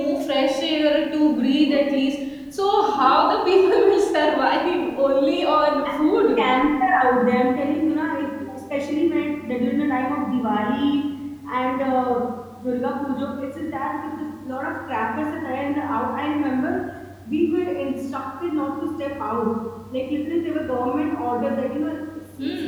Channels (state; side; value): identical; both; correlation 1.00